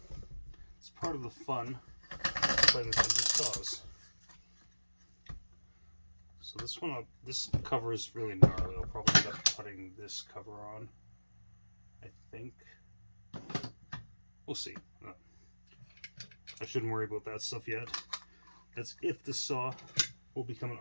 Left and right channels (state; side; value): inverted; both; correlation -1.00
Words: it's part of the fun playing with these saws. So this cover is really gnarly. I'll probably end up putting this cover on, I think. We'll see. I shouldn't worry about that stuff yet. That's if the saw will become an